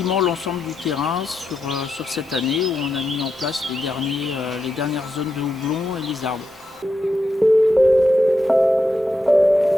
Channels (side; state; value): both; normal; correlation 0.85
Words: l'ensemble du terrain sur cette année où on a mis en place les dernières zones de houblon et les arbres.